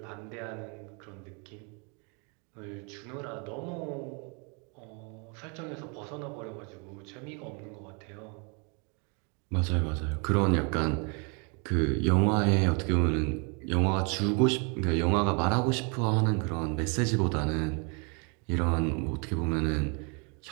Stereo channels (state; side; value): quieter; left; 34.8 dB